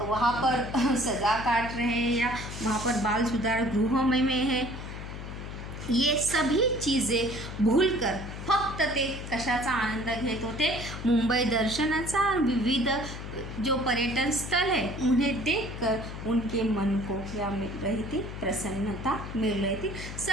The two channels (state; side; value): noise; left; hum, 9 dB below the sound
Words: पर सज़ा काट रहे हैं या वहाँ पर बाल सुधार गृह में है, ये सभी चीज़ें भूलकर फक्त ते कशाचा आनंद घेत होते, मुंबई दर्शनाचा. विविध जो पर्यटन स्थल है उन्हें देखकर उनके मन को क्या मिल रही थी, प्रसन्नता मिल रही थी.